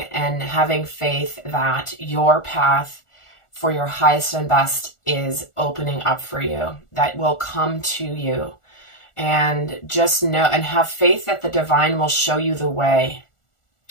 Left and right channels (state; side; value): late; right; 1.4 ms